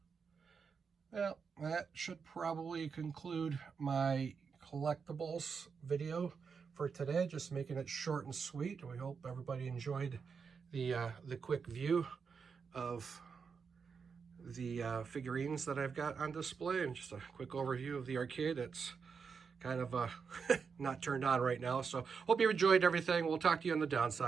Well, that should probably conclude my collectibles video for today. Just making it short and sweet. We hope everybody enjoyed the quick view of the figurines that I've got on display, and just a quick overview of the arcade. It's kind of not turned on right now. So hope you enjoyed everything. We'll talk to you on the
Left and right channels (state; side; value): quieter; left; 5.8 dB